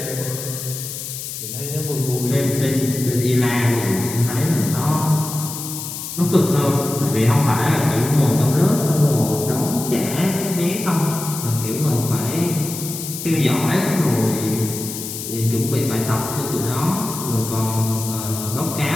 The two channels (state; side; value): noise; left; hiss, 8 dB below the sound